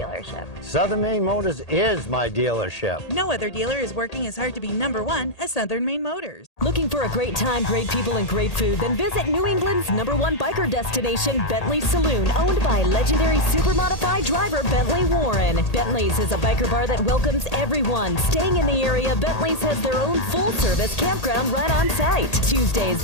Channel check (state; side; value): late; right; 1.8 ms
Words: Southern Maine Motors is my dealership. No other dealer is working as hard to be #1 as Southern Maine Motors. Looking for a great time, great people, and great food? Then visit New England's #1 biker destination, Bentley Saloon, owned by legendary super modified driver Bentley Warren. Bentley's is a biker bar that welcomes everyone. Staying in the area, Bentley's has their own full-service campground right on site. Tuesdays,